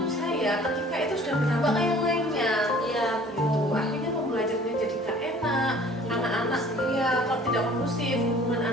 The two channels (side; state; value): both; normal; correlation 0.51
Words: saya ketika itu sudah berdampak ke yang lainnya. Iya, Gitu. Akhirnya pembelajarannya jadi gak enak, anak-anak ya kalau tidak kondusif, hubungan